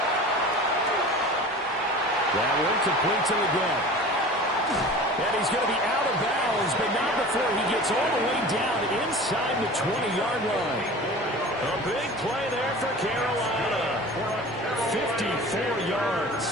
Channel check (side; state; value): both; normal; correlation 0.38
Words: That one complete to the ground. And he's going to be out of bounds, but not before he gets all the way down inside the 20-yard line. A big play there for Carolina. 54 yards.